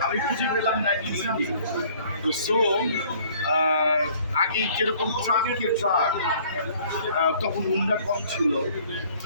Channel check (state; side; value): inverted; both; correlation -0.56